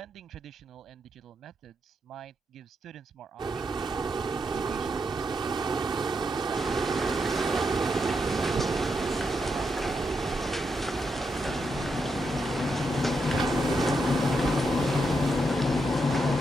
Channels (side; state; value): both; normal; correlation 0.82